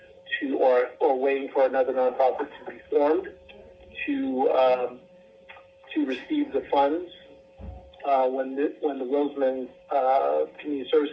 or waiting for another nonprofit to be formed to receive the funds when the Roseman Community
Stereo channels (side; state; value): both; identical; correlation 1.00